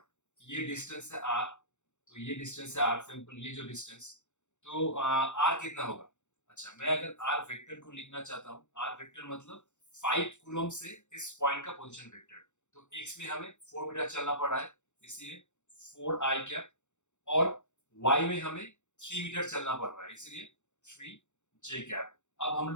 ये डिस्टेंस है R, तो ये डिस्टेंस है R, सिंपल ये जो डिस्टेंस, तो R कितना होगा? अच्छा, मैं अगर आर वेक्टर को लिखना चाहता हूँ, आर वेक्टर मतलब 5 कूलम से इस पॉइंट का पोजीशन वेक्टर। तो एक्स में हमें 4 मीटर चलना पड़ा है, इसलिए 4 आई कैप, और वाई में हमें 3 मीटर चलना पड़ रहा है, इसलिए 3 जे कैप। अब हम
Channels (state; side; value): late; right; 0.84 ms